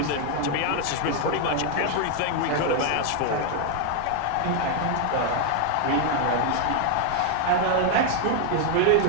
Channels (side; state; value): both; different; correlation 0.00